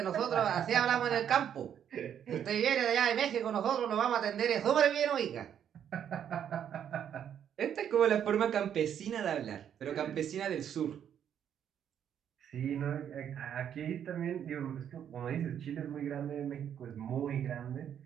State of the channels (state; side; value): quieter; left; 9.1 dB